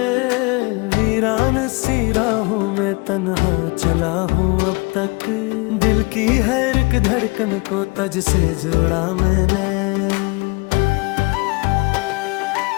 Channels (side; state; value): right; quieter; 27.4 dB